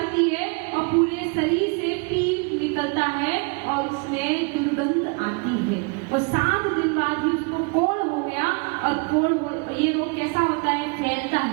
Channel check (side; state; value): left; quieter; 32.1 dB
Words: है और पूरे शरीर से पीप निकलता है और उसमें दुर्गंध आती है। और 7 दिन बाद ही उसको कोढ़ हो गया। और ये रोग कैसा होता है? फैलता